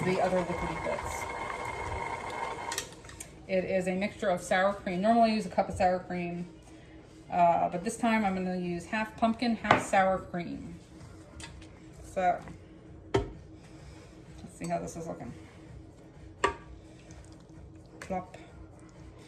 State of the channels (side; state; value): both; identical; correlation 1.00